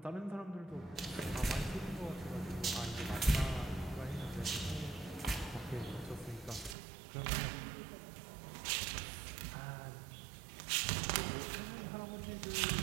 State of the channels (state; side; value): drops out; left; at 6.8 s